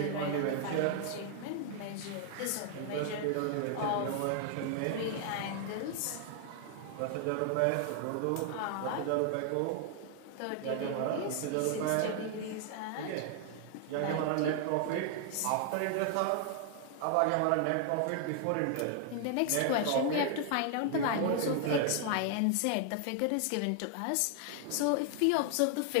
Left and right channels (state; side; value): different; both; correlation 0.00